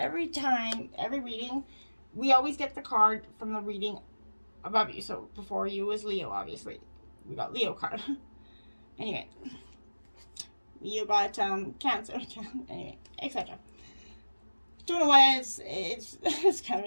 time, every reading, we always get the card from the reading above you. So before you was Leo, obviously. We got Leo card. Anyway. You got Cancer. Anyway, etc. Don't know why it's kind of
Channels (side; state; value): both; inverted; correlation -1.00